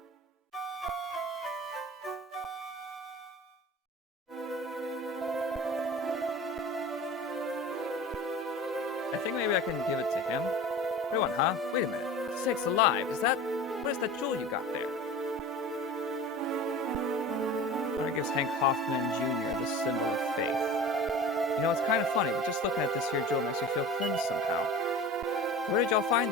I think maybe I can give it to him. What do you want, huh? Wait a minute. Sakes alive, what is that jewel you got there? Honor gives Hank Hoffman Jr. the symbol of faith. You know, it's kind of funny, but just looking at this here jewel makes me feel cleansed somehow. Where did y'all find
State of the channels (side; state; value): both; normal; correlation 0.37